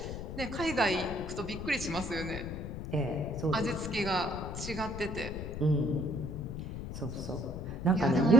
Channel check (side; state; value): left; noise; rumble, 7 dB below the sound